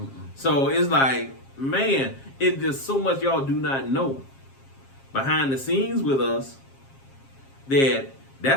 So it's like, man, it's just so much y'all do not know behind the scenes with us.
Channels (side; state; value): right; late; 7.4 ms